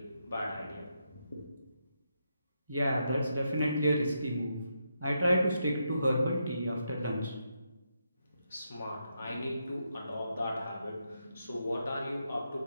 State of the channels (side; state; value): both; inverted; correlation -0.82